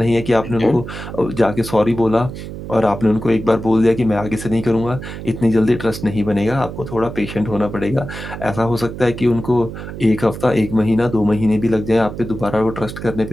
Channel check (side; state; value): right; noise; hum, 10 dB below the sound